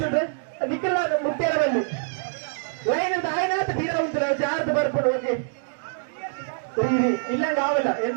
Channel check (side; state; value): left; silent; digital silence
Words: ನಿಖಿಲ ಮುಟ್ಟೇರವಲ್ಲಿ ಲೈನ್ ಅಂತ ಆಯ್ನಾತ ತೀರ ಉಂಟು ಜಾರ್ದು ಬರ್ಕೊಂಡು ಓಕೆ ಇಲ್ಲಂಗ ಆವಲ್ಲ